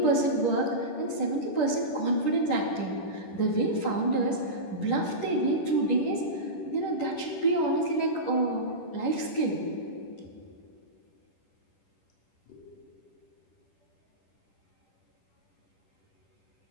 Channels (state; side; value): late; right; 10 ms